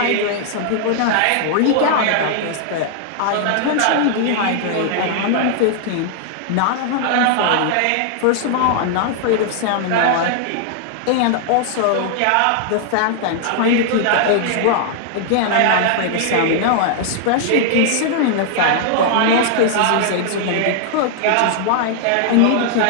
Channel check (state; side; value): different; both; correlation -0.01